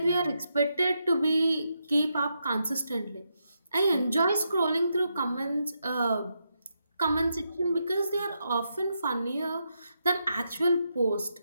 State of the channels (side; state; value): both; inverted; correlation -0.83